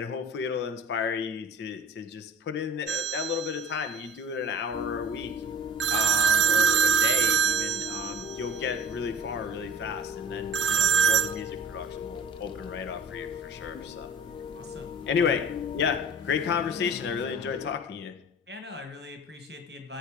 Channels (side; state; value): both; normal; correlation 0.42